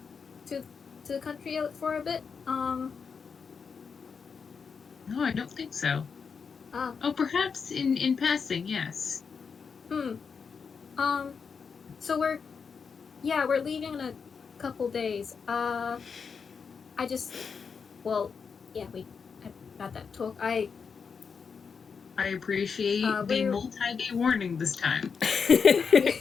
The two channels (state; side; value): quieter; right; 5.8 dB